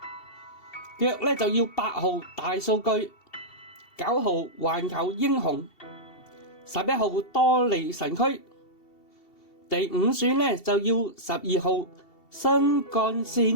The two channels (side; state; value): right; late; 2.7 ms